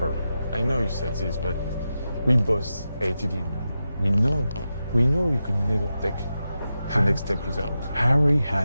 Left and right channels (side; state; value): both; inverted; correlation -0.90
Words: I know you said this, but we both hated him. We know you could never take the next step without. Harry